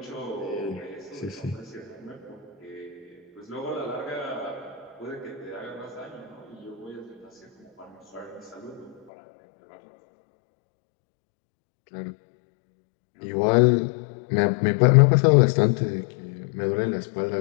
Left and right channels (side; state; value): right; drops out; at 9.0 s